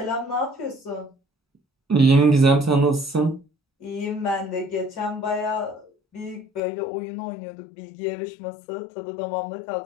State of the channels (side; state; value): right; drops out; at 6.6 s